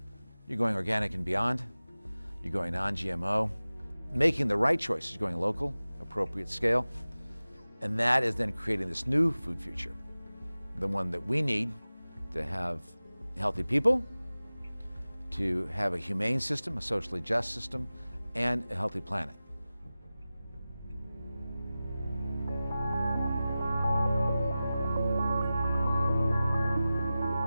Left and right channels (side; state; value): both; inverted; correlation -0.96